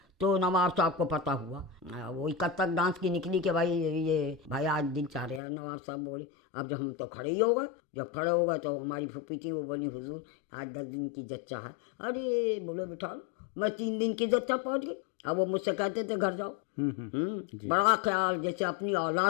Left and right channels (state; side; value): drops out; right; at 5.4 s